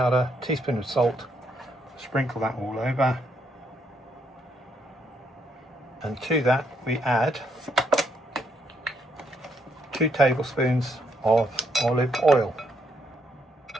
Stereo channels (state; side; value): normal; both; correlation 0.74